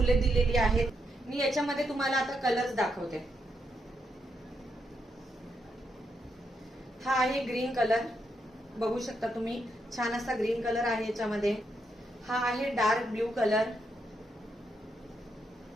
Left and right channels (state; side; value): normal; both; correlation 0.80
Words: दिलेली आहेत. मी याच्यामध्ये तुम्हाला आता कलर्स दाखवते. हा आहे ग्रीन कलर, बघू शकता तुम्ही. छान असा ग्रीन कलर आहे याच्यामध्ये. हा आहे डार्क ब्ल्यू कलर.